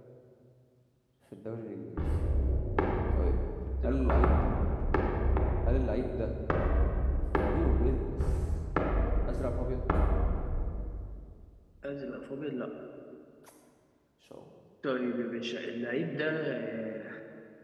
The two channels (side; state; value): both; identical; correlation 1.00